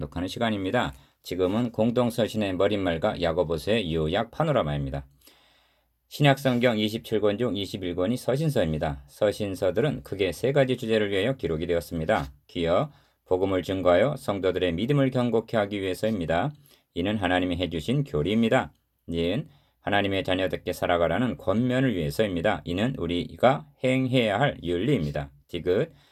시간입니다. 지금은 공동서신의 머릿말과 야고보서의 요약 파노라마입니다. 신약 성경 27권 중 21권이 서신서입니다. 서신서들은 크게 세 가지 주제를 위하여 기록이 되었습니다. 기여, 복음을 증거하여 성도들의 믿음을 경고케 하기 위해서입니다. 이는 하나님이 해주신 교리입니다. 니은, 하나님의 자녀답게 살아가라는 권면을 위해서입니다. 이는 우리가 행해야 할 윤리입니다. 디귿,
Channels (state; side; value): identical; both; correlation 1.00